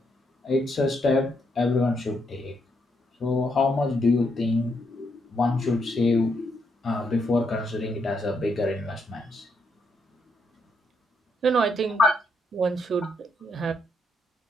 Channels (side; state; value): both; normal; correlation 0.77